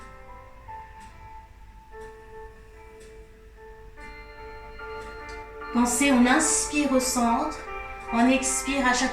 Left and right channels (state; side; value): identical; both; correlation 1.00